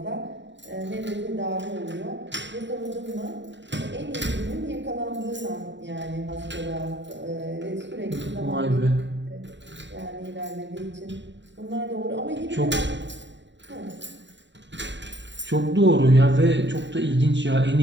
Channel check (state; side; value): late; left; 0.53 ms